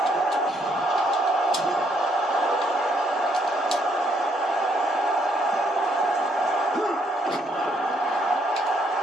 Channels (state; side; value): normal; both; correlation 0.71